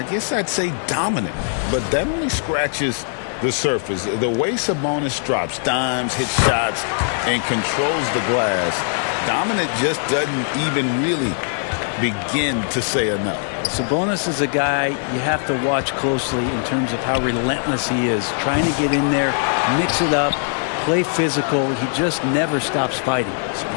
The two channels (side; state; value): right; silent; 65 dB below the other